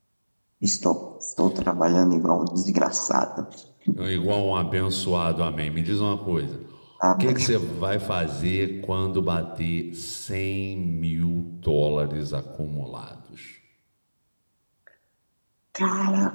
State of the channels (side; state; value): both; inverted; correlation -1.00